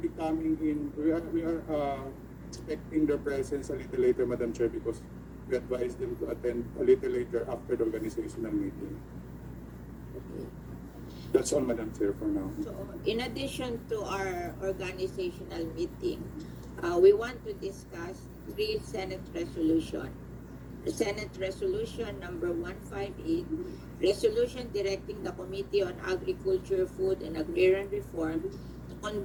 coming in, we are expecting their presence a little later, Madam Chair, because we advise them to attend a little later after the organizational meeting. Okay. That's all, Madam Chair, for now. So, in addition to our organizational meeting, we want to discuss 3 Senate resolution. The Senate Resolution number 158, resolution directing the Committee on Agriculture, Food, and Agrarian Reform to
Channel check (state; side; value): identical; both; correlation 1.00